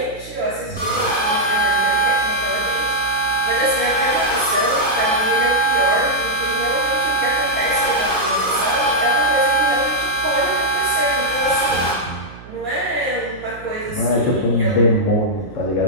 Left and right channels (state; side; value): noise; right; hum, 18 dB below the sound